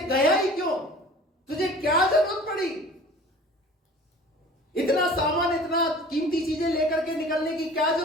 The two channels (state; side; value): normal; both; correlation 0.44